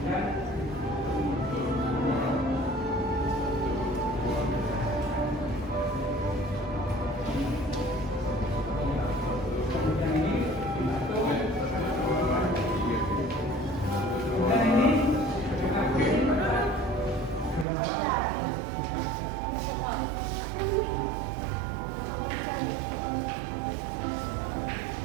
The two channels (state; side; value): drops out; left; at 17.7 s